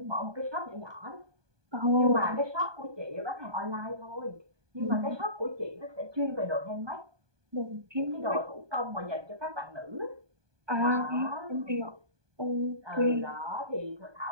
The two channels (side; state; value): left; late; 1.2 ms